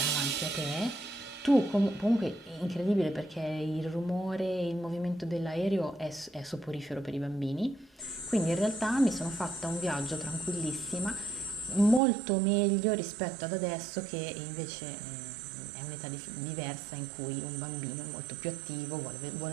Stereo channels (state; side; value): drops out; left; at 12.0 s